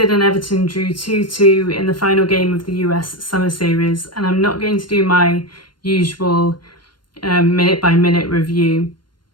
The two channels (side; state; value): right; late; 0.72 ms